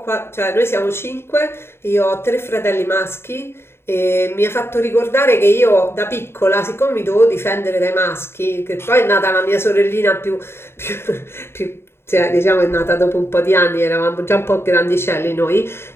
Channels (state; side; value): late; right; 0.12 ms